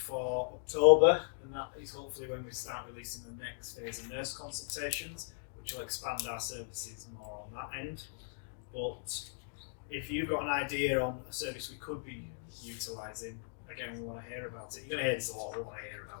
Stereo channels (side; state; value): right; silent; digital silence